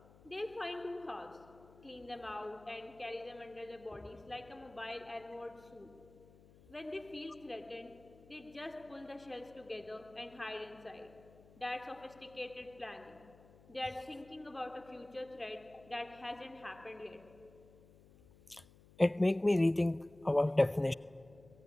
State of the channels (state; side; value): noise; left; hum, 23 dB below the sound